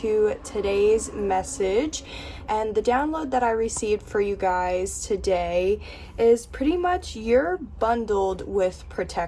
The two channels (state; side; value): identical; both; correlation 1.00